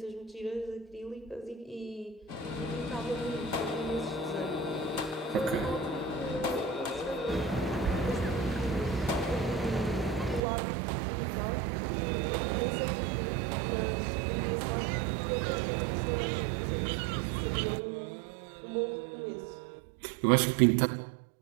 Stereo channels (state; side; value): drops out; left; at 10.4 s